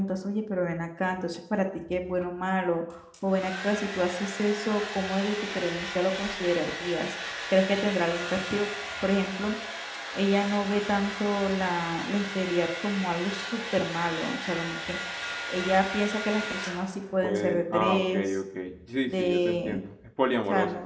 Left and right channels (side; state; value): both; identical; correlation 1.00